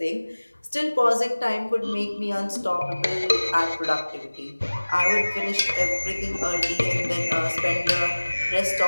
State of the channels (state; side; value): inverted; both; correlation -1.00